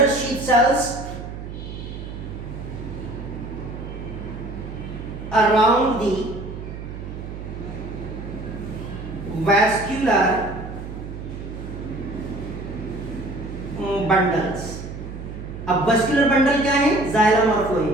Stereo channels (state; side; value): noise; right; hum, 9 dB below the sound